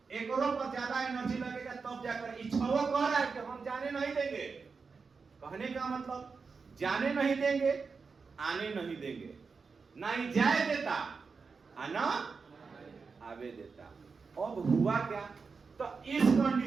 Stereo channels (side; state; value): left; quieter; 5.0 dB